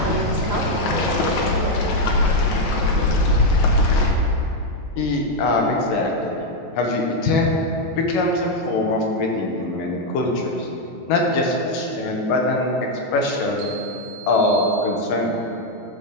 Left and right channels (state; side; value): normal; both; correlation 0.02